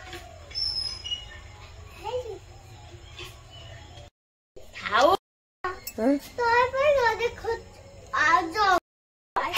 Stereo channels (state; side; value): identical; both; correlation 1.00